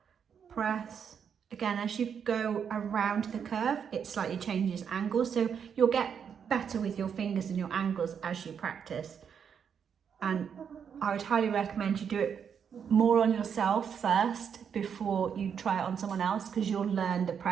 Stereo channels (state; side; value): quieter; left; 7.4 dB